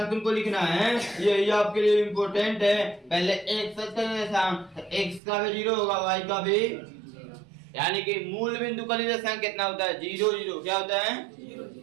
को लिखना है, यही आपके लिए इम्पोर्टेंट है, पहले x सच का निर्देशांक, x का भी 0 होगा, y का भी, यानी कि मूल बिंदु का निर्देशांक कितना होता है, 0 0, क्या होता है,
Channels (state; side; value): drops out; left; at 5.2 s